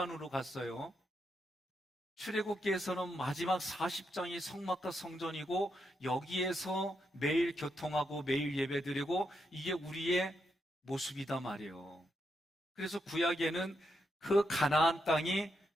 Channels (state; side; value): normal; both; correlation 0.81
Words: 갔어요. 출애굽기에서는 마지막 40장이 성막과 성전이고 여기에서 매일 교통하고 매일 예배드리고 이게 우리의 모습이다 말이에요. 그래서 구약에는 그 가나안 땅이